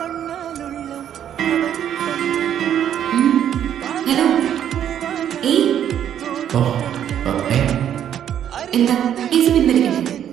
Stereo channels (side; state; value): left; quieter; 9.9 dB